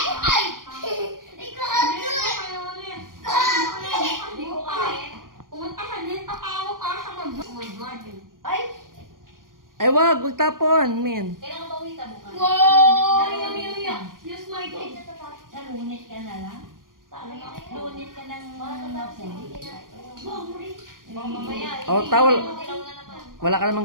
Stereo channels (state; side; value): late; left; 0.90 ms